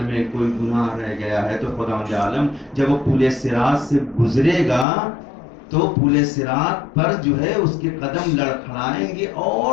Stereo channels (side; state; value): right; drops out; at 4.9 s